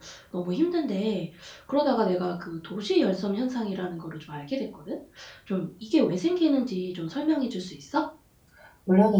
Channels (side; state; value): both; identical; correlation 1.00